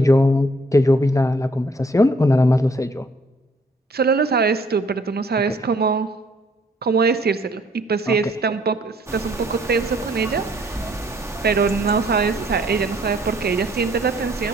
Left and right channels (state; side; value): normal; both; correlation 0.63